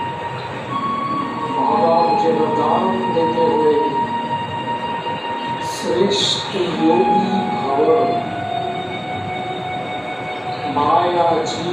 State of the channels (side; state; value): both; identical; correlation 1.00